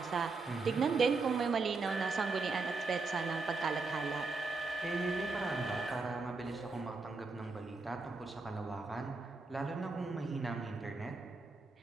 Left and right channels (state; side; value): quieter; left; 4.0 dB